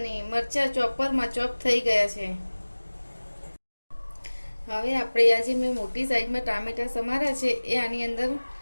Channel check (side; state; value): both; inverted; correlation -1.00